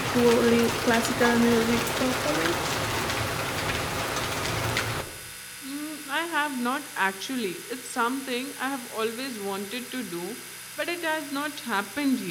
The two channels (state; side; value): identical; both; correlation 1.00